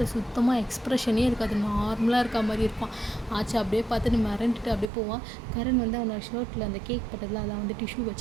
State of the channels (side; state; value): left; drops out; at 4.9 s